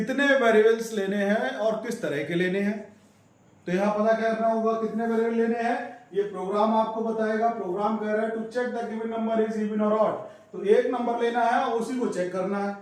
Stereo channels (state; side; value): identical; both; correlation 1.00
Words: वेरिएबल्स लेने हैं और किस तरह के लेने हैं। तो यहां पता करना होगा कितने वेरिएबल लेने हैं, ये प्रोग्राम आपको बताएगा। प्रोग्राम कह रहा है to check the given number is even or odd. तो एक नंबर लेना है और उसी को चेक करना है,